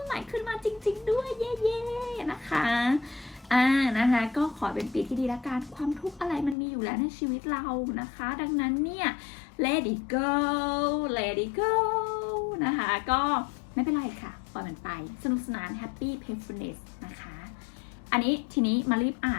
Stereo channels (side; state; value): right; drops out; at 6.6 s